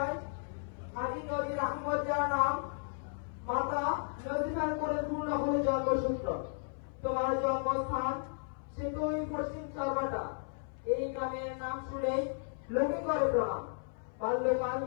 হাজী নদীর আহমদ যার নাম, মাতা নদীখান করে পূর্ণ হয়ে জন্মসূত্র। তোমার জন্মস্থান সেতুই পশ্চিম চরবাটা। এই গ্রামের নাম শুনেই লোকে করে প্রণাম। বাল্যকাল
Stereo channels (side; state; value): right; silent; 55 dB below the other